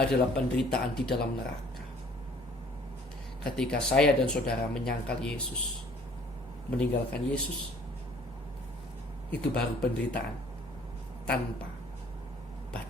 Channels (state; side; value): normal; both; correlation 0.56